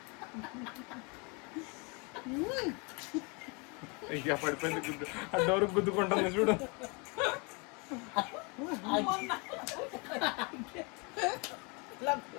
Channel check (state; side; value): quieter; right; 31.2 dB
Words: ఇక పడిపోయింది గుద్దు, ఆ డోర్ గుద్దుకుంటుంది చూడు. ఇలా